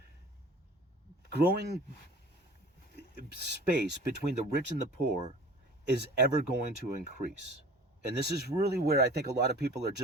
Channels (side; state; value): both; normal; correlation 0.43